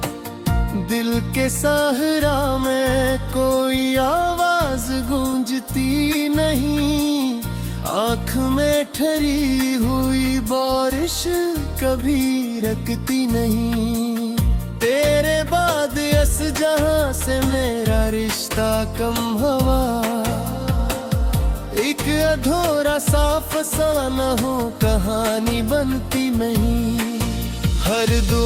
दिल के सहरा में कोई आवाज गूंजती नहीं, आँख में ठहरी हुई बारिश कभी रुकती नहीं। तेरे बाद इस जहां से मेरा रिश्ता कम हवा, एक अधूरा सा फसाना हो कहानी बनती नहीं। हर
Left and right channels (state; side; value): identical; both; correlation 1.00